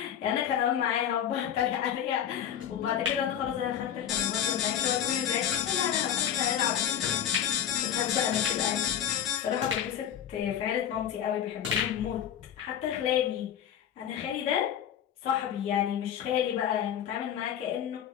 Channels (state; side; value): quieter; right; 9.6 dB